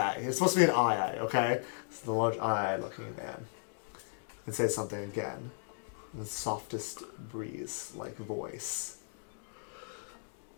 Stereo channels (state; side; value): silent; right; digital silence